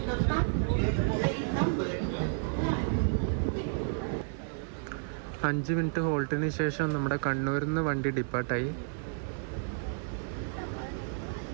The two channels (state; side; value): silent; left; digital silence